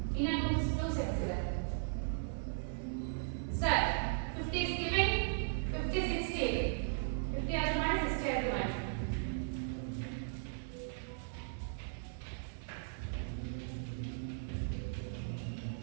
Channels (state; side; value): silent; left; 53 dB below the other